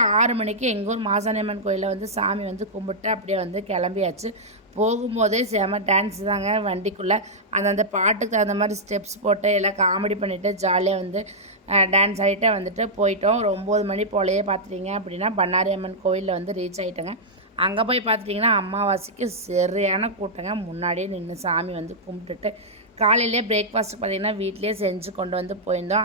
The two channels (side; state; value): both; normal; correlation -0.08